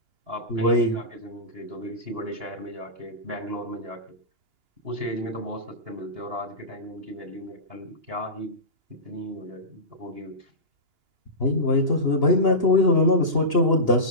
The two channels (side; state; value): left; late; 2.9 ms